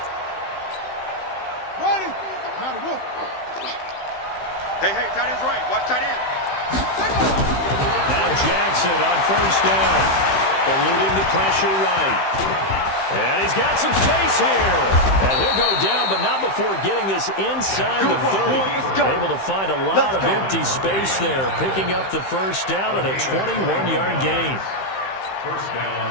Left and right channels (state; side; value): late; right; 15 ms